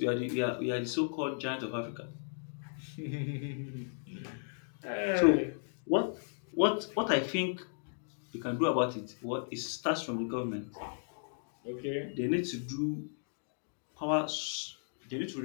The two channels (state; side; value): silent; right; digital silence